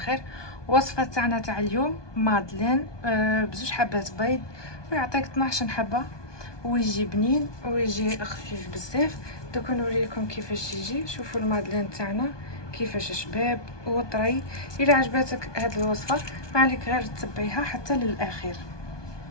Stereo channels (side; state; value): right; late; 1.2 ms